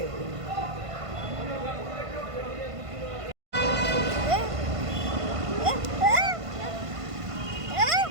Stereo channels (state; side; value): late; left; 1.5 ms